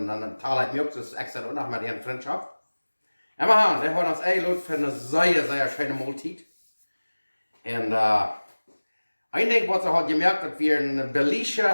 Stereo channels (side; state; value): both; inverted; correlation -1.00